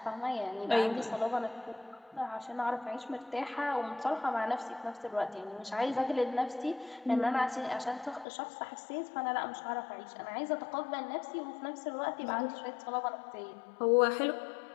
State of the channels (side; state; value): right; drops out; at 8.2 s